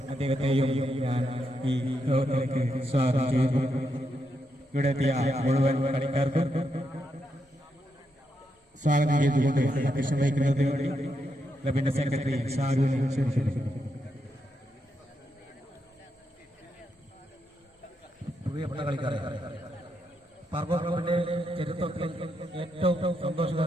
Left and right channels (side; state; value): both; normal; correlation 0.82